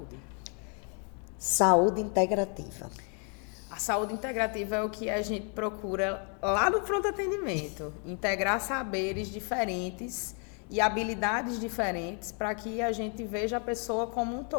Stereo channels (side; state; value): right; quieter; 39.1 dB